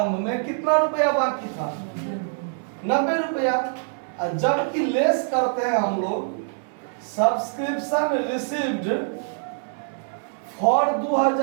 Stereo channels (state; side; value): silent; left; digital silence